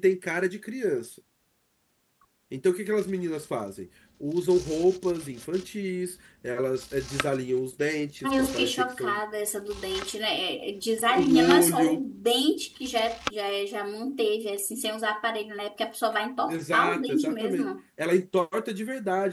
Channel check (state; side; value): identical; both; correlation 1.00